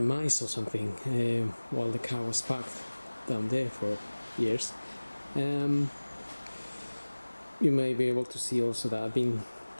or something while the car was parked down there for years. You may be able to see also that I've been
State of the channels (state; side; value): inverted; both; correlation -1.00